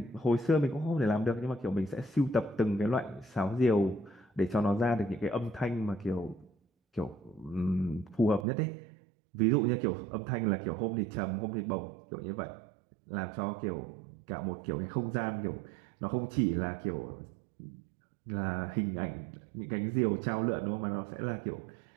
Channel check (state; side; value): drops out; left; at 8.5 s